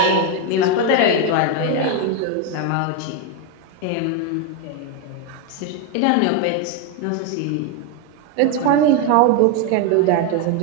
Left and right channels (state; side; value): different; both; correlation 0.02